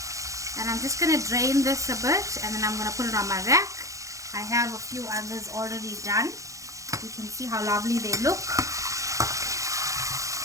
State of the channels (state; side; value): late; left; 0.15 ms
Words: And I'm just going to drain this a bit, and then I'm going to put it on my rack. I have a few others already done. You can see how lovely they look.